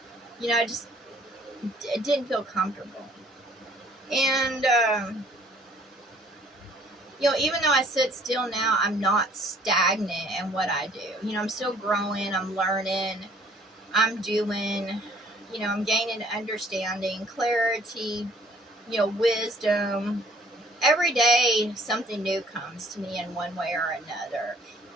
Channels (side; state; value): both; normal; correlation 0.58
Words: you know, it didn't feel comfortable. And, you know, even though I sit still now, I'm not stagnant in what I do. You know, I'm still growing, I'm learning, I'm doing, you know, I'm gaining understanding, clarity, you know, wisdom. Every day, something new comes to me in one way or another,